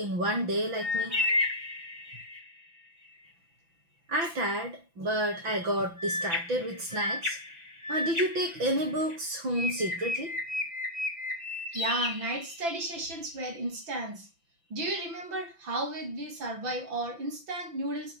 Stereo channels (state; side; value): late; left; 5.9 ms